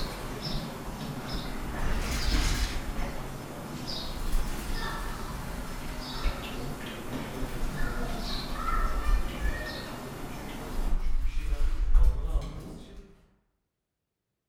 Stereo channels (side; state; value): both; identical; correlation 1.00